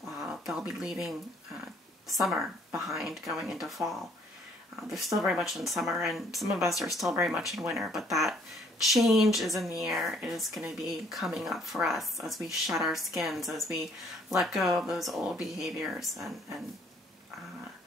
they'll be leaving summer behind, going into fall. They're still very much in summer, and some of us are still very much in winter, but that change is in the air. It is going to be coming up for us as we shed our skins, as we let go of those old behaviors and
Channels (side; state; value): both; normal; correlation 0.62